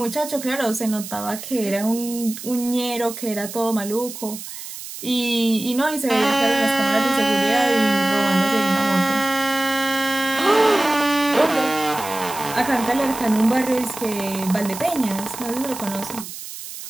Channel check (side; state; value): right; noise; hiss, 11 dB below the sound